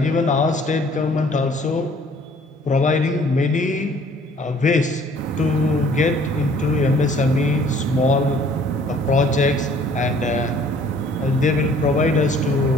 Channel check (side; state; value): both; normal; correlation 0.56